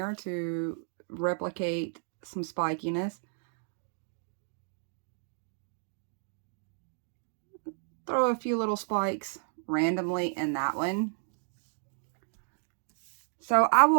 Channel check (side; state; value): left; silent; 56 dB below the other